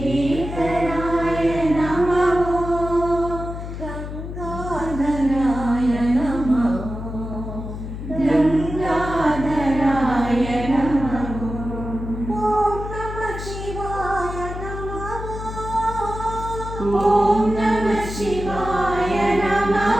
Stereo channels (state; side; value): noise; left; hum, 8 dB below the sound